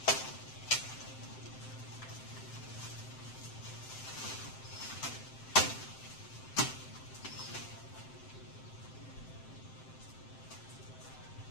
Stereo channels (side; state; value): right; late; 7.7 ms